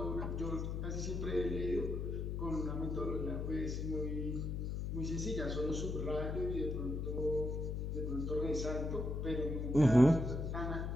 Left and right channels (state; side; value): noise; left; hum, 2 dB below the sound